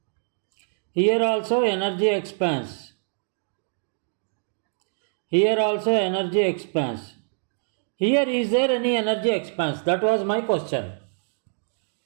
Here also energy expense. Here also energy expense. Here is there any energy expense? That was my question.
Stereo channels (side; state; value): left; silent; digital silence